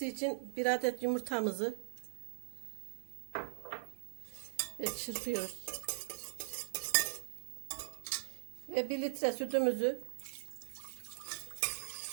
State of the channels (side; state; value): left; silent; digital silence